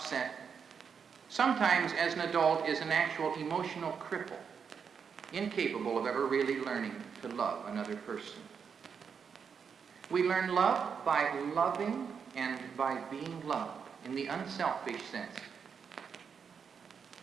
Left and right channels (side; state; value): left; quieter; 6.5 dB